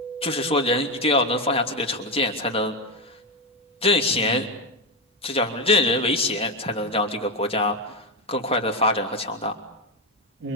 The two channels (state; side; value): normal; both; correlation 0.10